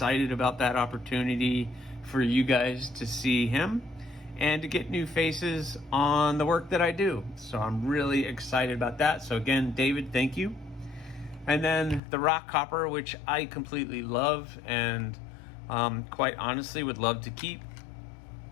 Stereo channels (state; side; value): drops out; right; at 12.0 s